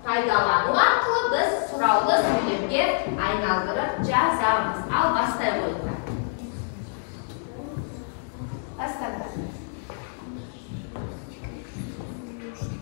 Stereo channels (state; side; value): silent; right; digital silence